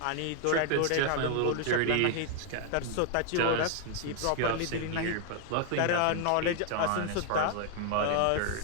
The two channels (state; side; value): different; both; correlation 0.00